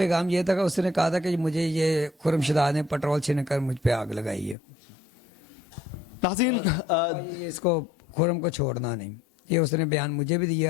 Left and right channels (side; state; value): right; drops out; at 4.5 s